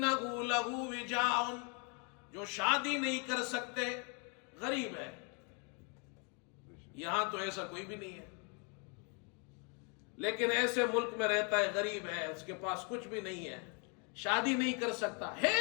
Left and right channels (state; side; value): quieter; right; 35.9 dB